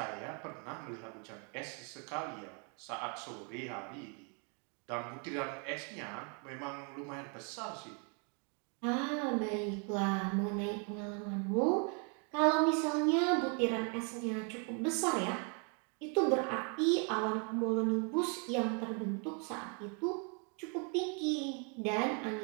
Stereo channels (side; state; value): left; quieter; 37.7 dB